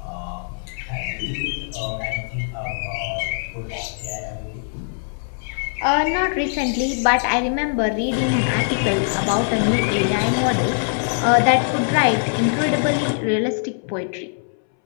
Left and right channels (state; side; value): silent; right; 63 dB below the other